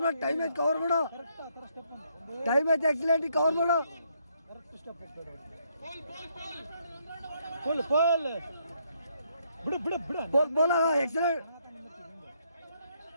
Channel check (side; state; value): both; inverted; correlation -0.73